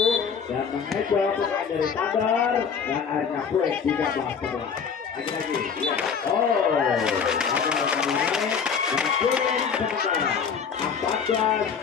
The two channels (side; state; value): right; quieter; 6.5 dB